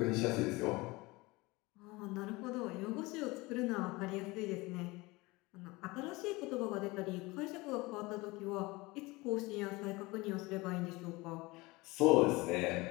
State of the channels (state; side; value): quieter; right; 22.7 dB